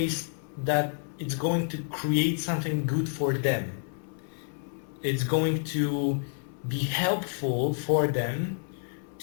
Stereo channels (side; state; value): right; silent; 59 dB below the other